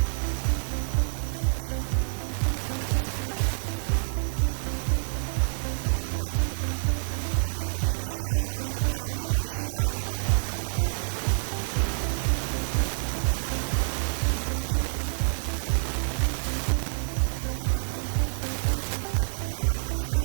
sa college life mo? Yung mamimiss ko talaga ng sobra guys, yung yung mga friends ko also, the memories. Ayan. Yung mga memories na ginawa namin during first year tsaka to fourth year, talagang na-feel ko yung moment na nandun sila. Tulong-tulungan kami. Nagtutulungan kami sa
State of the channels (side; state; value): left; silent; digital silence